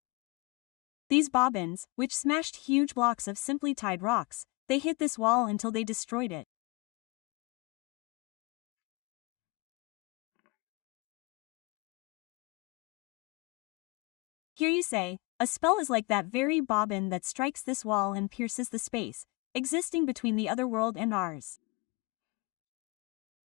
These bobbins, which smashed huge blocks of simply tied rocks, they hit this wall until they destroyed it. Here you say, a spell is like that very bobbin that strikes this wall and pierces the space existing between the other world and ours.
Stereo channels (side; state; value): right; quieter; 25.4 dB